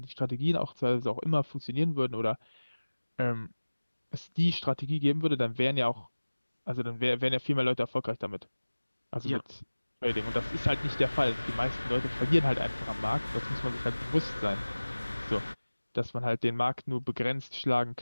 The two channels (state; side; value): inverted; both; correlation -1.00